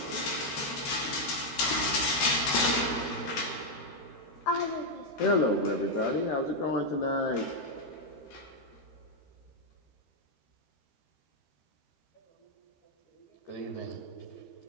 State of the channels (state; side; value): late; right; 13 ms